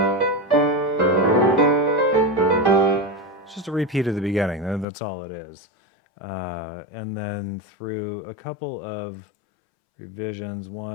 it's just a repeat of the beginning. That's all it is. And then through a couple of revisions,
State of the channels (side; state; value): right; drops out; at 4.9 s